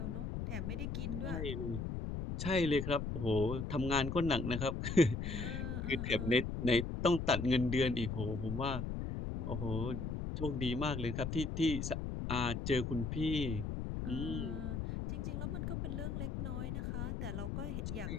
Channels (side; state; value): left; noise; rumble, 3 dB below the sound